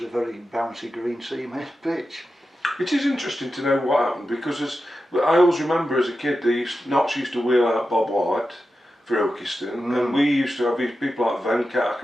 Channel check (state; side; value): normal; both; correlation 0.91